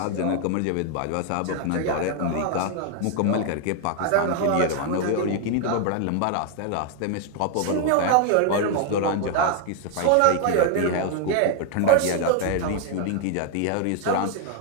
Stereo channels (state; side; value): different; both; correlation 0.00